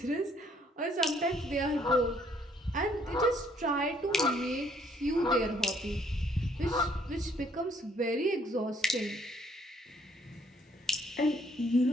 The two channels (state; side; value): normal; both; correlation 0.65